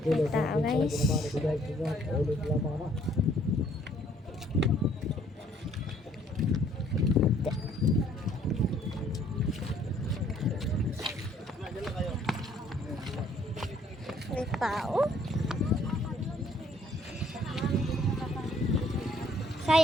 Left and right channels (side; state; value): both; normal; correlation 0.62